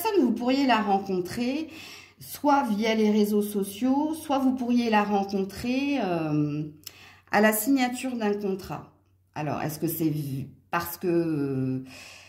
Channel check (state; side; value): identical; both; correlation 1.00